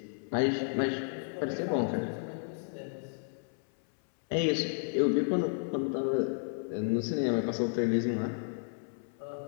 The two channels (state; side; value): silent; right; 56 dB below the other